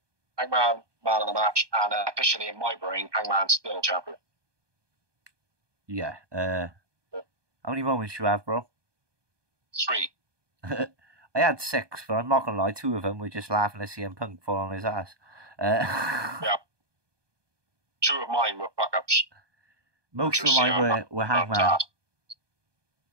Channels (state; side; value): late; left; 1.2 ms